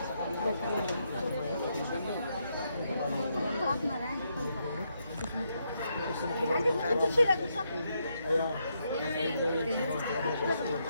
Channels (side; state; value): both; inverted; correlation -0.79